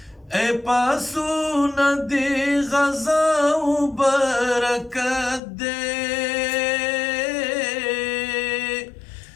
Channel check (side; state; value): right; drops out; at 5.4 s